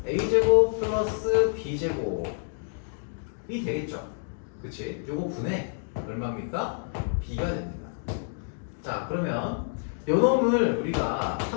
a제곱 플러스 b제곱이 되겠죠? 그치? 요거 분의 얼마입니까? b가 됩니다. 자, 그러면 요 놈을 우리가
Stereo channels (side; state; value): right; silent; digital silence